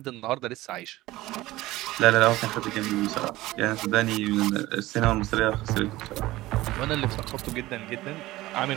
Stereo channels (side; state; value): left; quieter; 17.7 dB